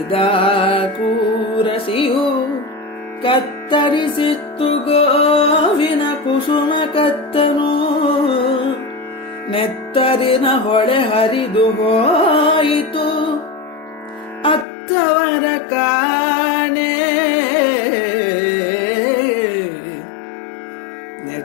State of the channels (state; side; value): drops out; right; at 14.7 s